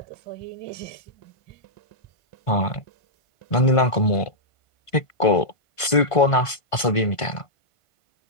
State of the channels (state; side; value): late; right; 1.5 ms